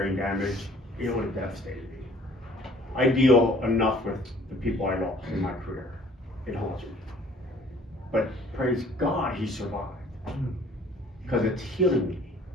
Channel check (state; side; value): normal; both; correlation 0.54